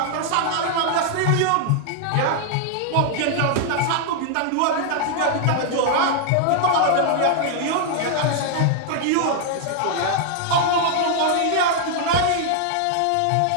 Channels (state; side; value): different; both; correlation 0.00